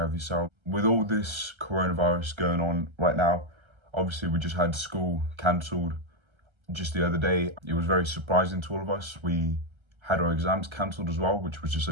of yourself. With all this coronavirus going on right now, obviously we just had school cancelled just the other day. It was very surprising to all of us. We had our exams cancelled as well, which was just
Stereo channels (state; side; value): late; left; 1.3 ms